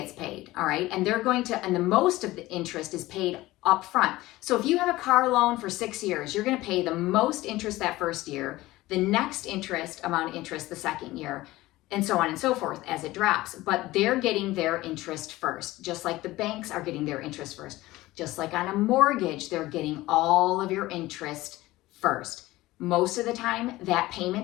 paid, all right? And the most of the interest is paid up front. So if you have a car loan for 6 years, you're gonna pay the most interest that first year, the next amount of interest the second year, and so on and so forth as it drops. But they're getting their interest first, just like the banks are getting their interest first. Just like on a mortgage, they're getting all of your interest first. Most of the time, that payment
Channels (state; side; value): quieter; right; 18.1 dB